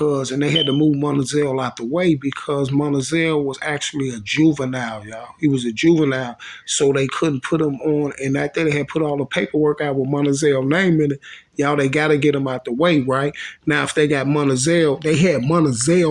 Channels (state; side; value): identical; both; correlation 1.00